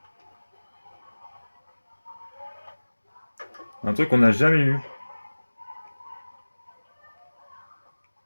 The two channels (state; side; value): inverted; both; correlation -1.00